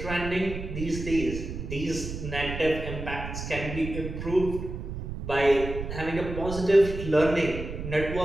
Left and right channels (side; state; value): right; noise; rumble, 7 dB below the sound